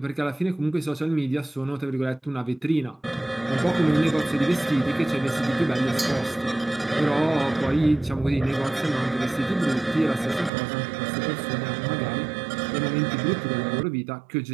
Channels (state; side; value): drops out; left; at 10.5 s